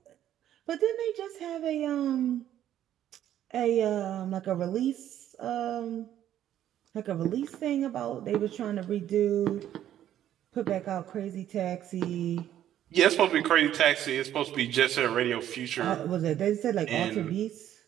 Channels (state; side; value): quieter; left; 11.4 dB